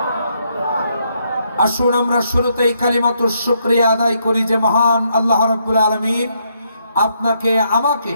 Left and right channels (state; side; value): inverted; both; correlation -0.75